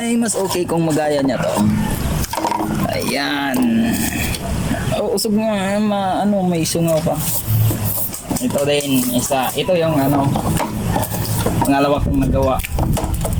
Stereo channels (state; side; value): identical; both; correlation 1.00